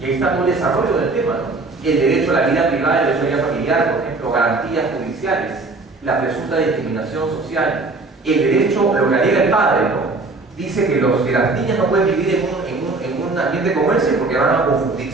ahí está todo el desarrollo del tema, ¿no? El derecho a la vida privada, el derecho a la vida familiar, por ejemplo, garantías judiciales, la presunta discriminación social, el derecho, lo que alega el padre, ¿no? Dice que las niñas no pueden vivir en un ambiente como ese porque van a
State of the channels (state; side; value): quieter; left; 3.5 dB